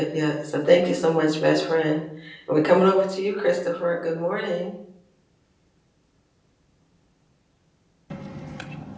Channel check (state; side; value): identical; both; correlation 1.00